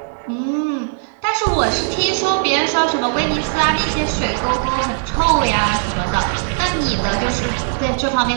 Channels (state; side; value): silent; left; digital silence